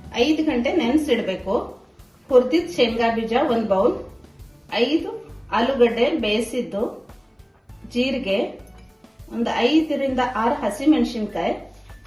5 ಗಂಟೆ ನೆನೆಸಿಡ್ಬೇಕು. ಹುರಿದಿದ್ದ ಶೇಂಗಾ ಬೀಜ 1 ಬೌಲ್, 5 ಆಲೂಗಡ್ಡೆ ಬೇಯಿಸಿದ್ದು, ಜೀರಿಗೆ, ಒಂದು 5 ರಿಂದ 6 ಹಸಿಮೆಣಸಿನಕಾಯಿ,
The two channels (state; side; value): identical; both; correlation 1.00